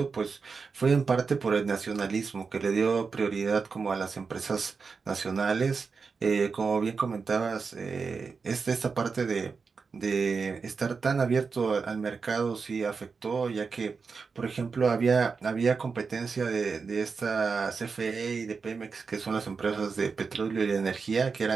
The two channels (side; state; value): left; quieter; 5.0 dB